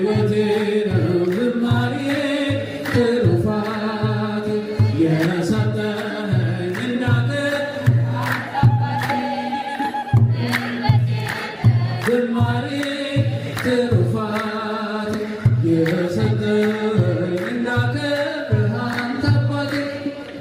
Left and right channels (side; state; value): both; identical; correlation 1.00